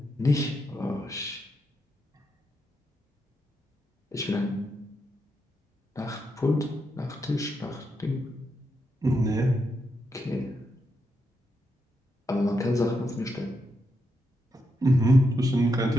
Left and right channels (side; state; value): both; normal; correlation 0.83